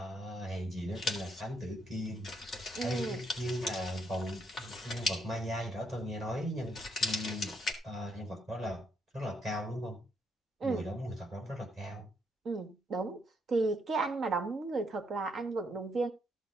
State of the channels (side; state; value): both; normal; correlation 0.75